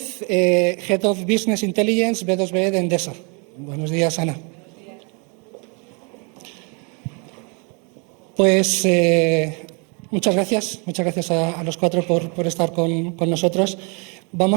Head of Business Intelligence B2B de Endesa. Buenos días, Ana. Pues muchas gracias a los cuatro por estar con nosotros.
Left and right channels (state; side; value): quieter; left; 34.3 dB